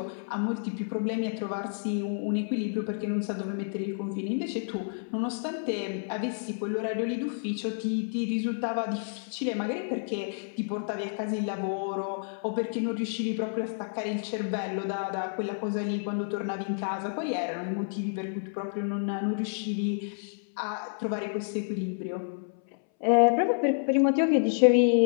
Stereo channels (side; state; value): right; silent; 58 dB below the other